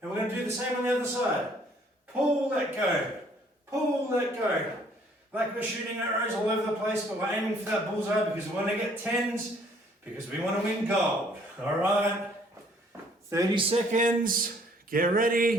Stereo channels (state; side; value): normal; both; correlation 0.61